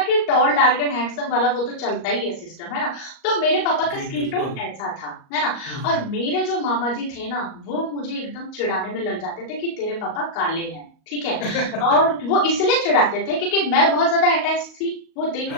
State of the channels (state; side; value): late; right; 38 ms